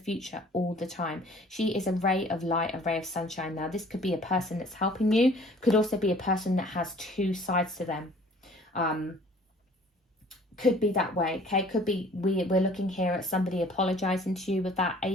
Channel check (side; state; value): both; normal; correlation 0.53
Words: all the time. She is a ray of light, a ray of sunshine. Now, this could be a person that's helping you, could also be a person that has two sides to them. Could be that way, okay? Could be we're looking here at somebody apologizing to you with that